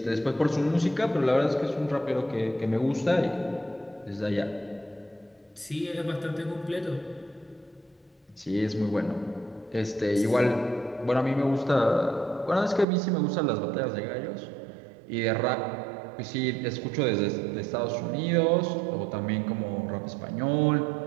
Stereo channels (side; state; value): left; drops out; at 12.9 s